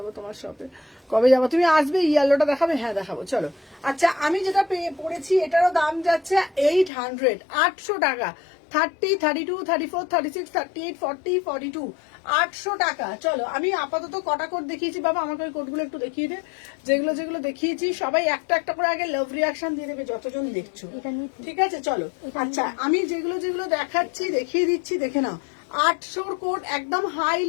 তোমার শপে কবে যাবো তুমি আসবে ইয়েলোটা দেখাবে হ্যাঁ দেখাবো চলো আচ্ছা আমি যেটা পড়েছি এটারও দাম যাচ্ছে 800 800 টাকা 30, 32, 34, 36, 38, 40, 42 800 টাকা চলো আমি আপাতত কটা কোড দেখিয়েছি বাবা আমাকে ওই কোডগুলো একটু দেখিয়ে দে যেগুলো দেখিয়েছি সবাই একটা একটা করে আগে লাভ রিয়াকশন দিয়ে দেবে যতজন দেখছো ঠিক আছে চলো আচ্ছা আমি যেগুলো দেখাচ্ছি দেখিয়ে দিচ্ছি দেখে নাও 800 কোড একদম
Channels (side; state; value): right; drops out; at 6.9 s